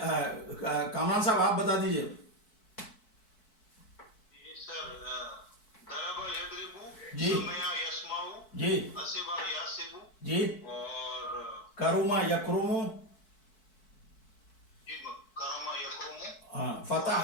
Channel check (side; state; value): right; late; 4.6 ms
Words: کامران صاحب آپ بتا دیجئے. جی جی جی, کروما یکروم,